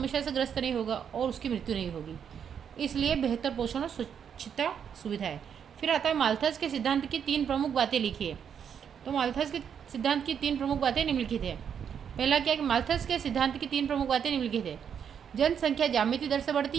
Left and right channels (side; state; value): left; quieter; 7.9 dB